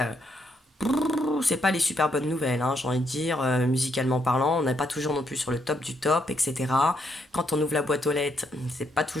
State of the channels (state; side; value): normal; both; correlation 0.75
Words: c'est pas les super bonnes nouvelles, hein, j'ai envie de dire, musicalement parlant, on n'est pas toujours non plus sur le top du top, etc. Quand on ouvre la boîte aux lettres, c'est pas